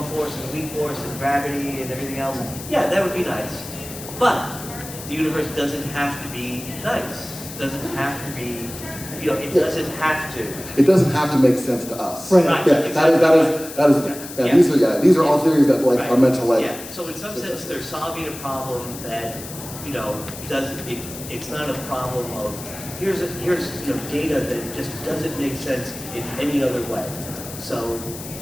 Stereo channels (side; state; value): left; noise; hiss, 12 dB below the sound